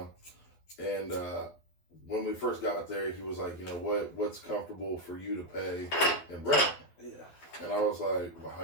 and when we first got there, he was like, you know, what's comfortable for you to pay in rent? Yeah. And I was like, well, how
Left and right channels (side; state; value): right; late; 12 ms